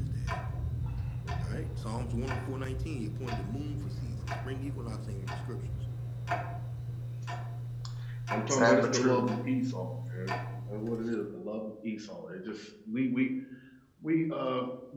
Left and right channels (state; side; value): identical; both; correlation 1.00